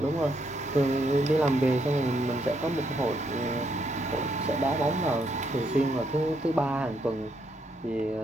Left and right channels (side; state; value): both; normal; correlation 0.75